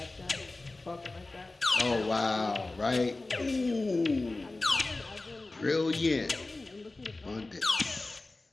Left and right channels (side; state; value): right; quieter; 3.1 dB